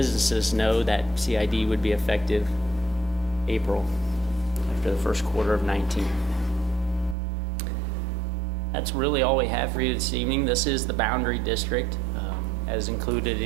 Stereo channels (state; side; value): drops out; left; at 7.2 s